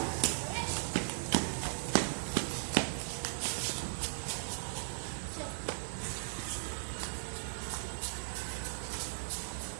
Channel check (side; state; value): left; silent; 53 dB below the other